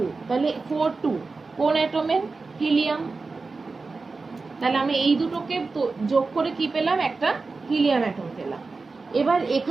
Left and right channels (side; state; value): left; quieter; 4.0 dB